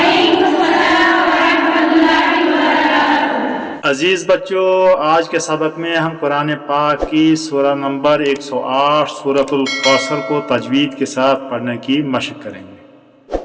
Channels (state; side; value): identical; both; correlation 1.00